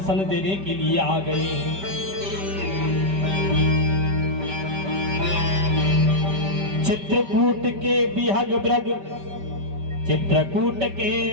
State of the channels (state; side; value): late; left; 5.2 ms